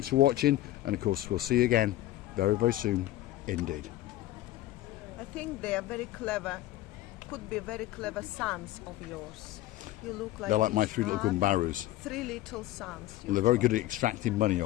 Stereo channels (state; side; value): quieter; right; 15.1 dB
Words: for watching, and of course we'll see you again very soon indeed. I think they are very clever. Could be very clever sons of yours. You look like They're like my each three little other. gumbarus. 3 little sons. Well, they're very good at extracting money